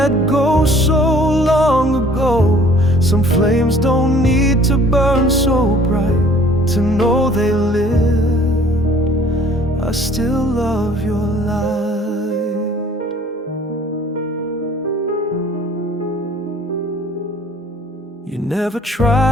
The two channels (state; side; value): normal; both; correlation 0.54